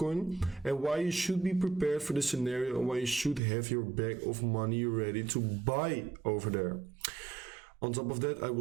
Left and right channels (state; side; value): drops out; left; at 3.4 s